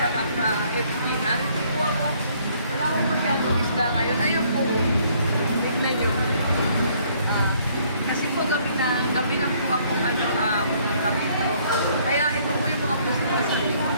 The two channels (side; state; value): both; inverted; correlation -0.64